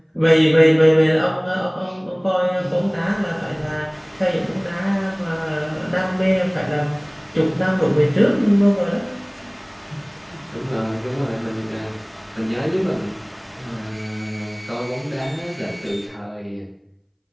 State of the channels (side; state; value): both; identical; correlation 1.00